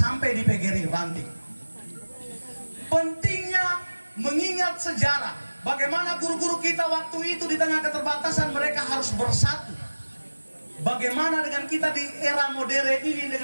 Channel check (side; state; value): both; inverted; correlation -1.00